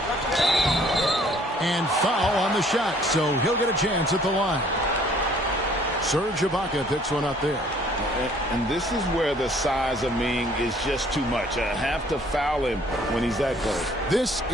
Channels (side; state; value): both; normal; correlation 0.58